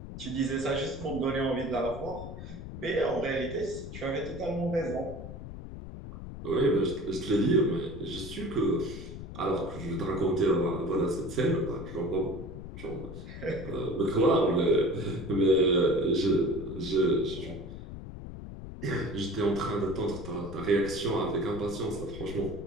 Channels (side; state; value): left; noise; rumble, 10 dB below the sound